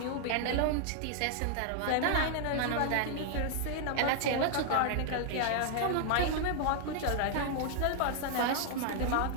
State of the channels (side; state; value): both; different; correlation 0.00